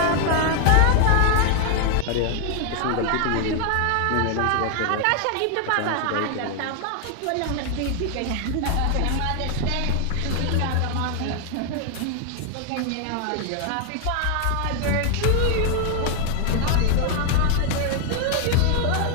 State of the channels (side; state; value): both; different; correlation 0.00